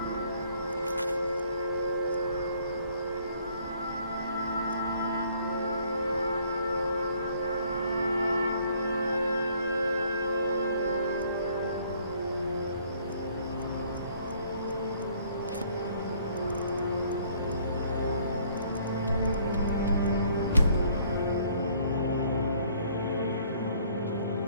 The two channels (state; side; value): inverted; both; correlation -0.61